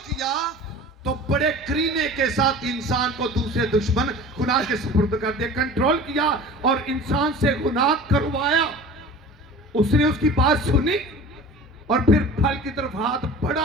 کیا تو بڑے کرینے کے ساتھ انسان کو دوسرے دشمن گناہ کے سپرد کر دیا، کنٹرول کیا اور انسان سے گناہ کروایا۔ اس نے اس کی بات سنی اور پھر پھل کی طرف ہاتھ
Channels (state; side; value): normal; both; correlation 0.39